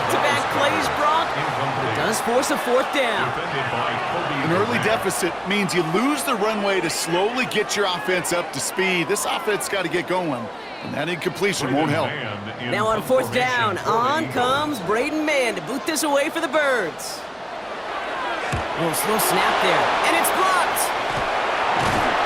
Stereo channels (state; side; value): identical; both; correlation 1.00